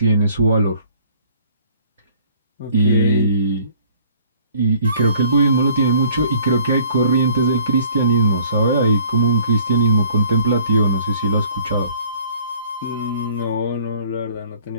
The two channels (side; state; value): both; inverted; correlation -0.57